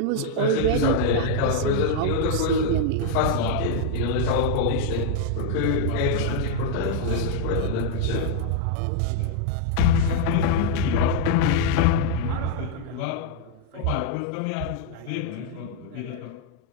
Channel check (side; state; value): both; different; correlation -0.01